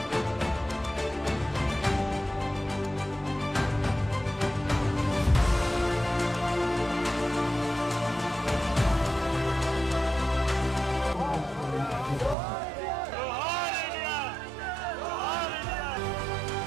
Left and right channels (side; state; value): left; drops out; at 12.4 s